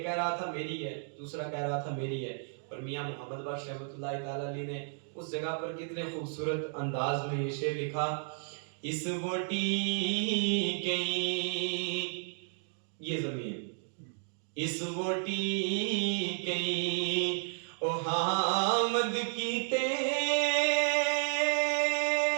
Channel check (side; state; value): left; silent; digital silence